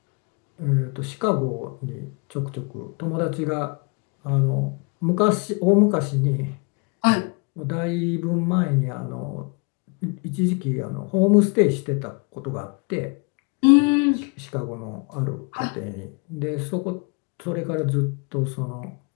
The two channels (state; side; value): quieter; right; 33.0 dB